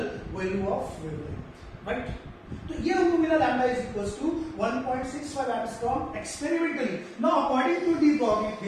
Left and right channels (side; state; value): both; identical; correlation 1.00